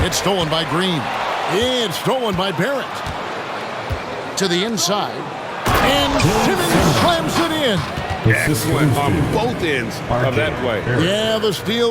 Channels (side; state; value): both; identical; correlation 1.00